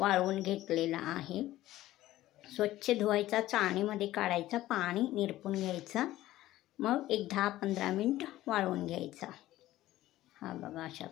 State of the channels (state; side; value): quieter; right; 15.3 dB